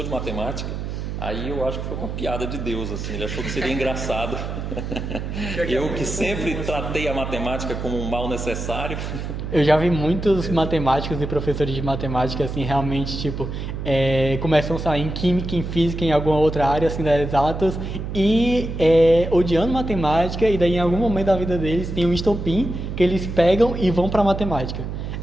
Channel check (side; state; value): right; noise; hum, 5 dB below the sound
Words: de matemática, aí eu acho que foi uma piada de Deus, assim, ele achou que seria engraçado. Eu que sempre tratei a matemática como um mal necessário. Eu já vi muitos matemáticos e professores de matemática, assim, realmente, tipo, começam a sair em química, em física, em alguma outra área, assim, das exatas, e odiando matemática, e daí em algum momento da vida deles tem um estopim que eles pegam e vão para matemática.